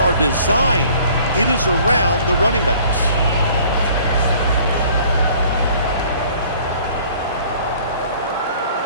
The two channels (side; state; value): both; inverted; correlation -0.54